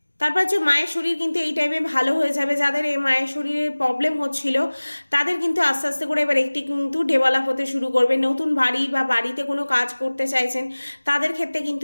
তারপর হচ্ছে মায়ের শরীর কিন্তু এই টাইমে ভালো হয়ে যাবে। যাদের এই মায়ের শরীরে প্রবলেম হচ্ছিল তাদের কিন্তু আস্তে আস্তে করে এবার একটি কিন্তু ডেভেলপ হতে শুরু করবে। নতুন বাড়ি বা বাড়িতে কোনো কাজ করতে চাইছেন তাদের ক্ষেত্রে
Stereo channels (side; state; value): both; inverted; correlation -1.00